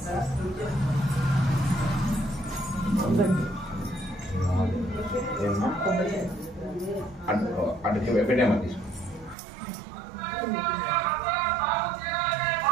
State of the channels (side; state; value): left; drops out; at 9.3 s